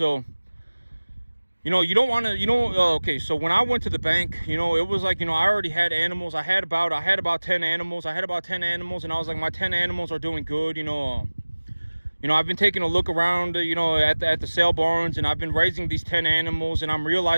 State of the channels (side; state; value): both; inverted; correlation -1.00